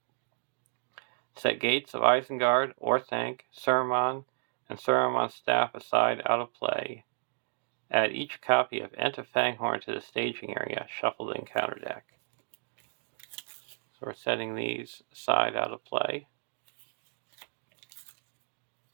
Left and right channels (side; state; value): left; silent; digital silence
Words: Set gates of Isengard, Orthanc, Saruman, and Saruman's staff aside out of play. Add each copy of Ent of Fanghorn to the staging area. Shuffle the encounter deck." So we're setting these aside out of play.